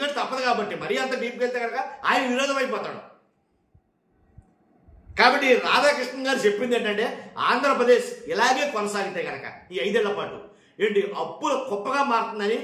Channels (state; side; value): identical; both; correlation 1.00